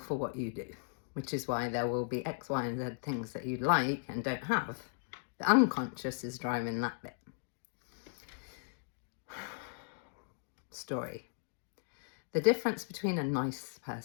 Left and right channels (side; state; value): right; silent; digital silence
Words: what you do, which is why there will be X, Y, and Z things that you like and don't have. The unconscious is driving that bit. Story. The difference between a nice